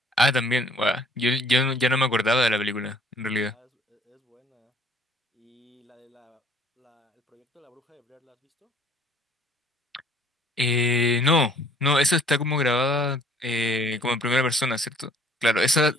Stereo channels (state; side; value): normal; both; correlation 0.58